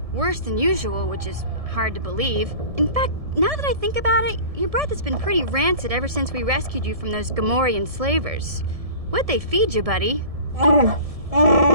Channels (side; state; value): left; late; 1.7 ms